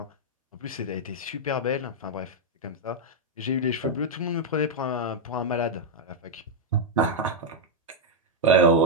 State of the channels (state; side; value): normal; both; correlation -0.02